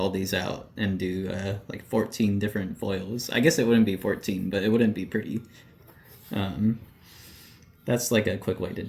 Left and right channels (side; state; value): both; identical; correlation 1.00